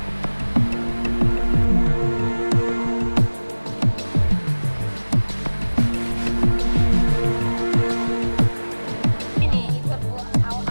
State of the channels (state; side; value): inverted; both; correlation -1.00